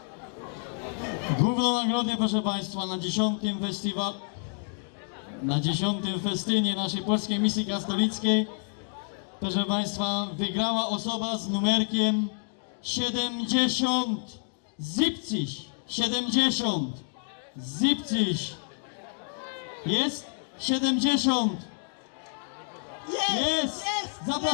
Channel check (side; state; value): right; silent; 57 dB below the other